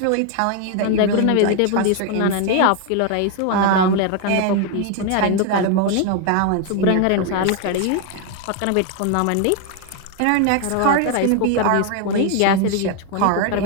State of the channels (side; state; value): both; different; correlation 0.01